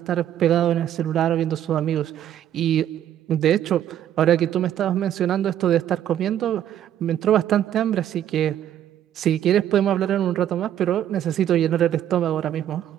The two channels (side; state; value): left; quieter; 10.9 dB